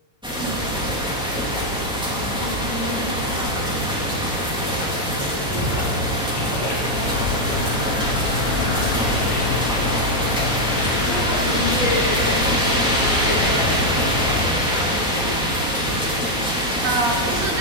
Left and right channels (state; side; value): normal; both; correlation 0.00